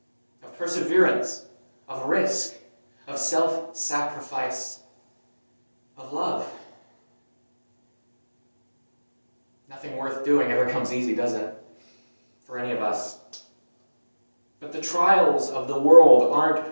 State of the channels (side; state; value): both; inverted; correlation -1.00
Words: of perseverance, of risk, of self-sacrifice, of love. Nothing worth doing ever comes easy, does it? For any of us. But the trials of the world